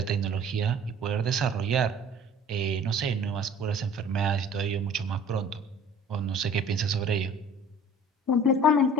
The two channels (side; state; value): both; normal; correlation 0.48